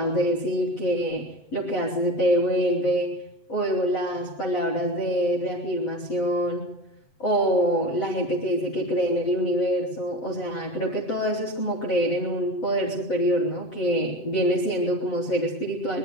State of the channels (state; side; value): late; right; 8.1 ms